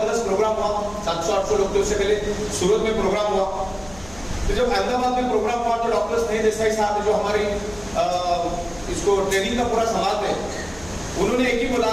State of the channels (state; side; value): noise; left; hum, 19 dB below the sound